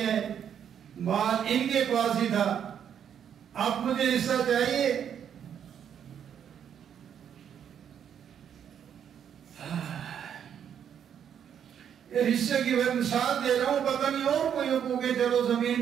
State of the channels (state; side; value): quieter; left; 8.7 dB